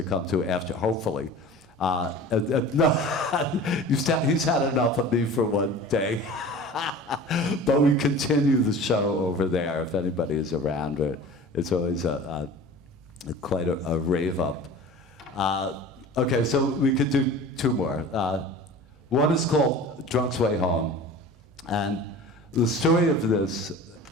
come to after, hopefully. No, he's had enough of me for one day. But we continue the show over there if anybody is around. It's always quite a rave up. Okay, so we could do two more. One is called Drunk's Way Home. And the story of this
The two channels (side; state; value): both; normal; correlation 0.39